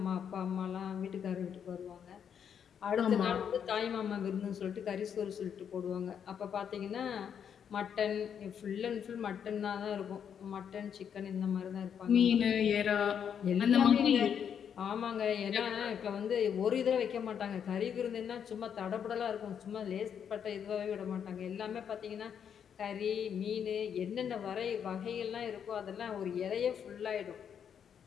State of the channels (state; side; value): quieter; right; 8.0 dB